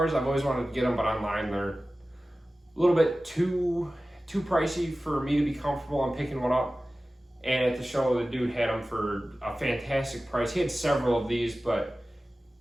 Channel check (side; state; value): both; normal; correlation 0.96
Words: I've always wanted to get them, but online they're a little bit too pricey for me to be comfortable on picking one up. And at the show, the dude had them for a fantastic price. He had several of these, but